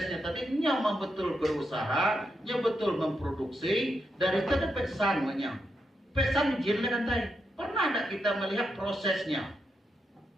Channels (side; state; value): both; normal; correlation 0.84